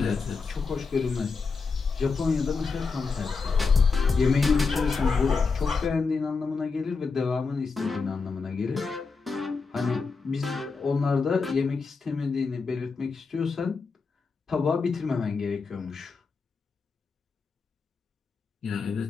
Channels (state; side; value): quieter; right; 4.7 dB